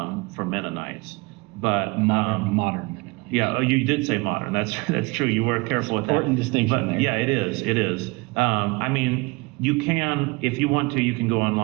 Mennonites, but modern Mennonites. yeah, oh, you did say modern. That's true. You were careful with that. Important distinction But there. yeah, it is. It is. I mean, you can, if you want to, you can go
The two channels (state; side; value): quieter; left; 25.8 dB